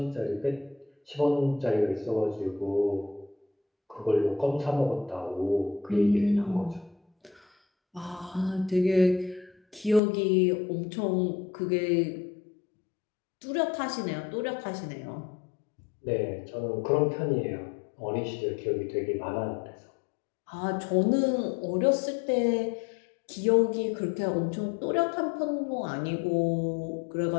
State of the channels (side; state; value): right; drops out; at 10.0 s